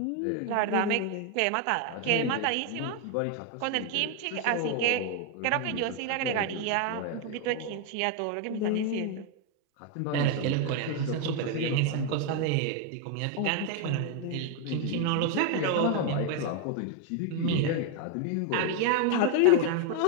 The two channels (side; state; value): both; different; correlation 0.01